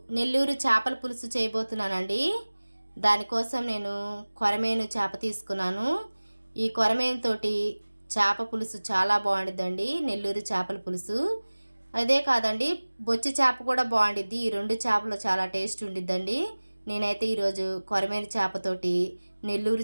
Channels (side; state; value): both; inverted; correlation -1.00